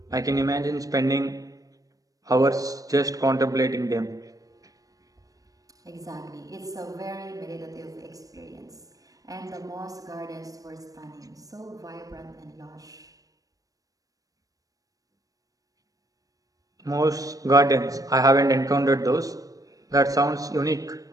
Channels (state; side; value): late; left; 0.17 ms